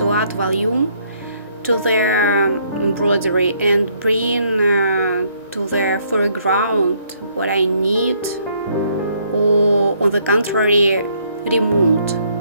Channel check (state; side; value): inverted; both; correlation -0.67